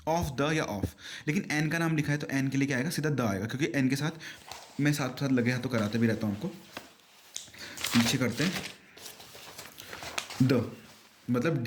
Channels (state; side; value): identical; both; correlation 1.00